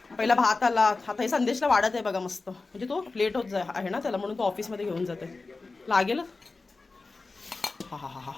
पहिला भात आला. आता हे संदेशला वाढत आहे बघा मस्त. म्हणजे तो लेट होत आहे ना त्याला, म्हणून तो ऑफिसमध्ये घेऊन जाते. लागेल. हा हा हा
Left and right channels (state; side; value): quieter; right; 3.7 dB